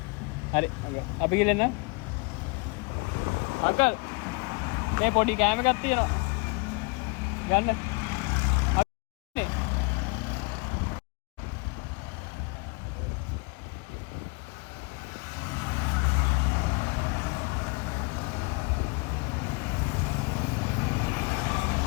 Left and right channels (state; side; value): quieter; right; 29.1 dB